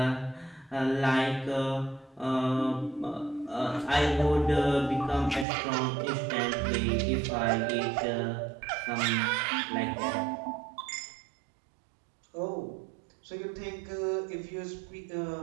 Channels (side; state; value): left; drops out; at 5.5 s